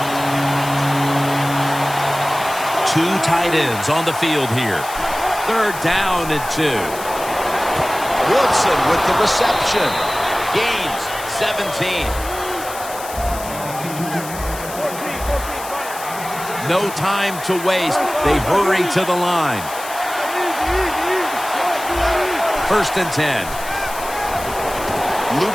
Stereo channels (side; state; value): left; noise; hiss, 12 dB below the sound